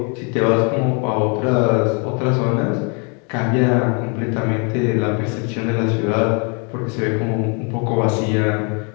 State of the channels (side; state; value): right; quieter; 35.7 dB